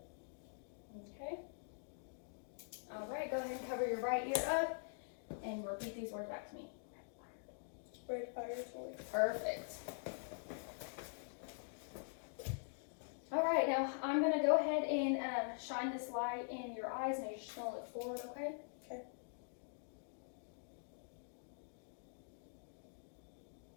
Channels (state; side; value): silent; right; digital silence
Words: Okay. All right, go ahead and cover your right ear up and repeat these words back to me. Red fire toy. Perfect. All right, now I'm going to go ahead and shine this light in your eyes. Now you're just going to look forward, okay? Okay.